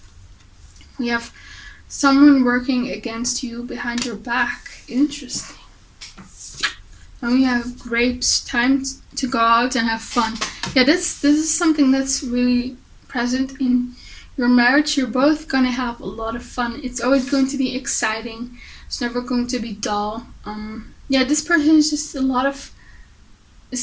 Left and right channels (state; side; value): identical; both; correlation 1.00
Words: We have someone working against you behind your back. Interesting. And we have grapes, time to go out and have fun. Yeah, this is something that's really present in your marriage. You're both gonna have a lot of fun. It's always going to be exciting. It's never going to be dull. Yeah, this person is just